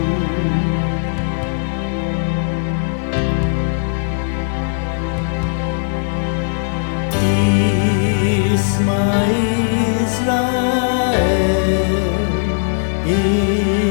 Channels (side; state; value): right; silent; digital silence